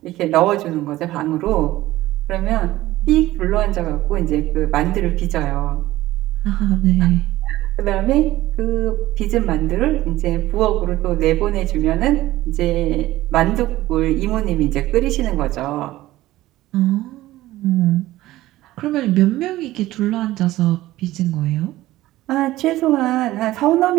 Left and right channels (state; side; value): quieter; left; 16.3 dB